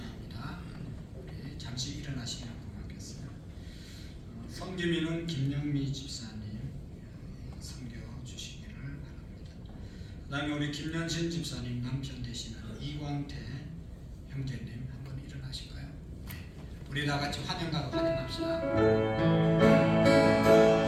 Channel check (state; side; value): identical; both; correlation 1.00